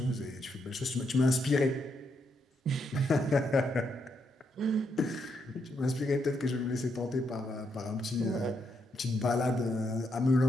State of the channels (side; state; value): both; normal; correlation 0.79